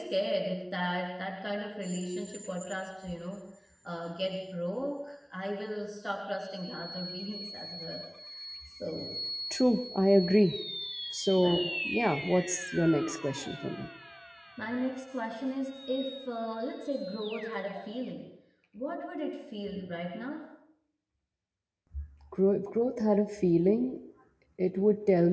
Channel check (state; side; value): identical; both; correlation 1.00